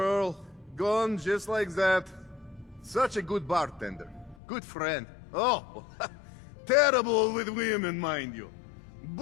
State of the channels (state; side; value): drops out; right; at 4.4 s